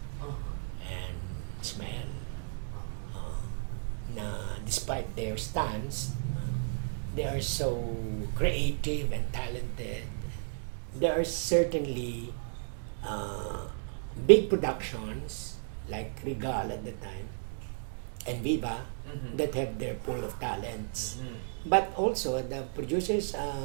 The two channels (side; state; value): left; silent; digital silence